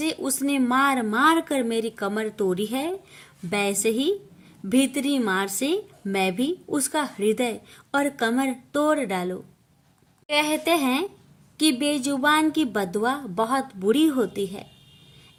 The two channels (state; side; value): identical; both; correlation 1.00